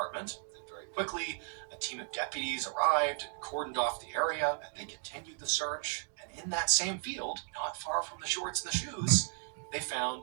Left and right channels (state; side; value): silent; left; 54 dB below the other